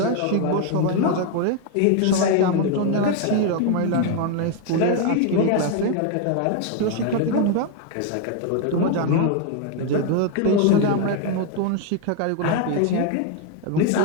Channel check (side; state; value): both; different; correlation 0.01